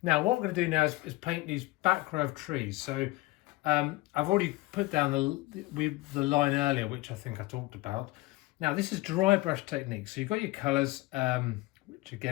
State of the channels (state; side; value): quieter; right; 20.4 dB